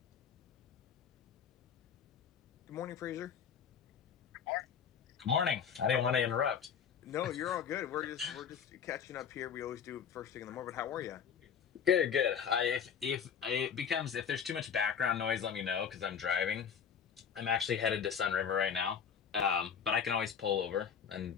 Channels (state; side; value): quieter; right; 7.5 dB